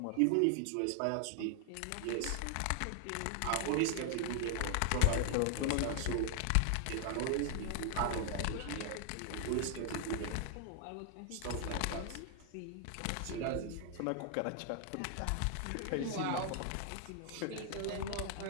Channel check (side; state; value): both; different; correlation 0.00